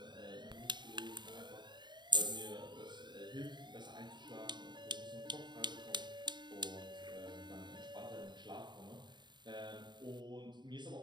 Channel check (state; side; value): late; left; 0.22 ms